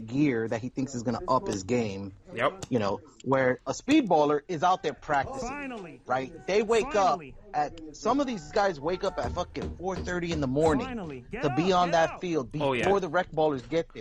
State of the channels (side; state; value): both; identical; correlation 1.00